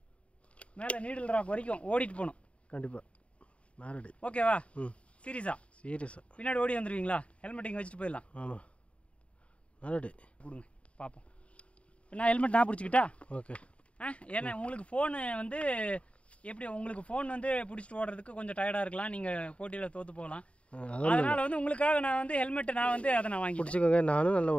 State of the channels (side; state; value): right; late; 0.062 ms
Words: நீடில் ராக் வரைக்கும் ஓடிட்டு போகணும். கண்டிப்பாக. மேரடி. ஓகேவா? சீரியஸா? பின்னாடி ஓடி வந்துடுவீங்களா? ஹெல்மெட் இங்கே வச்சுட்டு போயிடலாம். ஆமாம், மேரடி. கொடுங்க பார்ப்போம். நான் ஹெல்மெட் நான் பிடிச்சிக்கிட்டா? ஓகே. ஏன்னா உங்களுக்கு ஃபோனு வந்து எப்படி, உங்களுக்கு ஃபோன் வந்து பிடிச்சிட்டு ஓடுறதுக்கு கொஞ்சம் டயர்டாக இருக்கலாம், நீங்கள் போட்டியில் தோற்று போகலாம். அதனால் வந்து உங்களுக்காக நான் வந்து ஹெல்மெட்டை நான் வந்து அதை நான் வாங்கி பிடிச்சிக்கோங்க. நானும் நல்லா